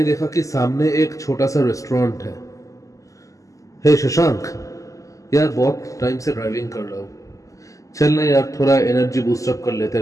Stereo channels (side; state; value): right; late; 0.16 ms